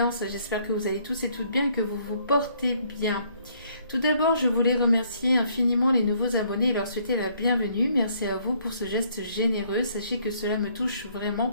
J'espère que vous allez tous et toutes bien et que vous vous portez bien. Tout d'abord, je voulais remercier infiniment les nouveaux abonnés et leur souhaiter la bienvenue. Merci à vous pour ce geste généreux. Sachez que cela me touche vraiment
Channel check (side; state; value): both; inverted; correlation -0.65